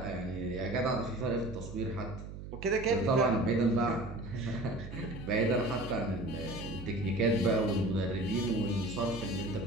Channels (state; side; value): noise; right; hum, 11 dB below the sound